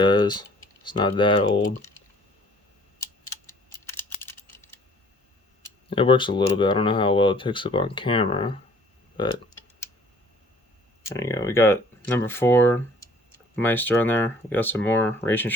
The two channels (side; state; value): both; normal; correlation 0.56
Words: It's not that old. It works a little bit. I don't know how well it picks up on camera, but there you go. We got number 4 Meister on there. We got some more racing